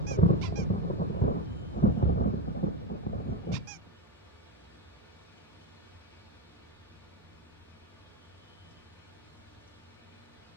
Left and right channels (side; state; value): both; normal; correlation 0.12